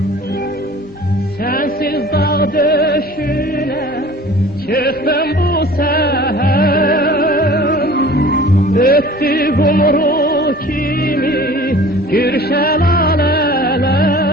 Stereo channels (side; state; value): both; normal; correlation 0.45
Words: Sensiz dağ döşüne çıktım bu seher. Öttü kumru kimi gür şelaleler.